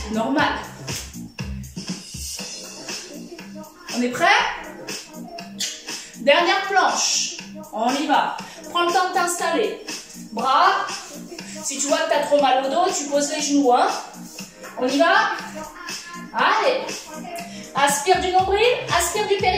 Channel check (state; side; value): identical; both; correlation 1.00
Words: Normal. On est prêt? Dernière planche. On y va. Prends le temps de t'installer. Bras. Si tu vois que tu as trop mal au dos, tu poses les genoux. Hein. On y va? Allez. Aspire du nombril, aspire du